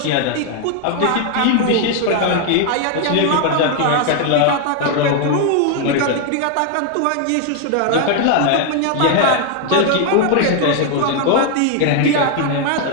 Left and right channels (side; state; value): both; different; correlation 0.00